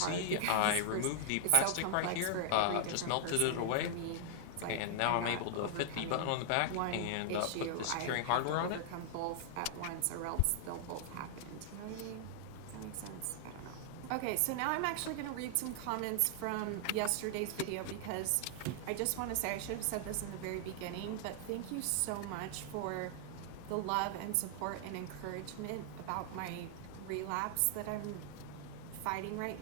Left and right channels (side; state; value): both; different; correlation 0.00